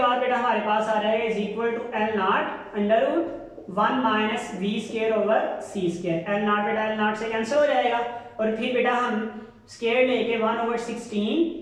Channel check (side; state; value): both; identical; correlation 1.00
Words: बेटा हमारे पास आ जाएगा is equal to L not under root 1 minus we square over C square. L not बेटा एल नॉट से कैंसिल हो जाएगा और फिर बेटा हम स्क्वायर लेके